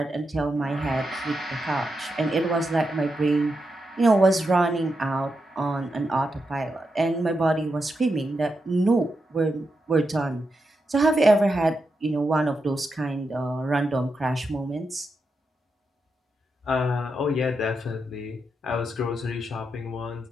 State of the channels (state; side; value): normal; both; correlation 0.86